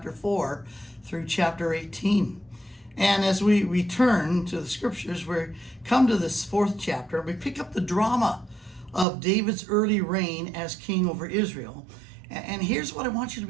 4 through chapter 18. And as we return to the scriptures, we come to this fourth chapter. We pick up the drama of David's early reign as king over Israel. And here's what I want you to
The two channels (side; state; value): left; drops out; at 9.1 s